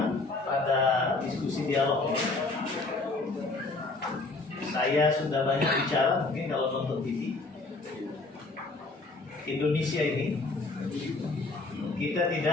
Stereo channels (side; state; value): right; quieter; 3.4 dB